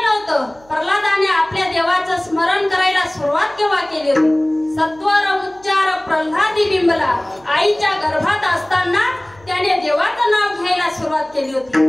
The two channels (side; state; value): right; noise; hum, 28 dB below the sound